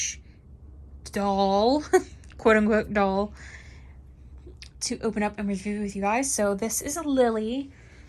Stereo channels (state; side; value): identical; both; correlation 1.00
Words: doll, quote unquote doll, to open up and review with you guys. So this is a Lilly.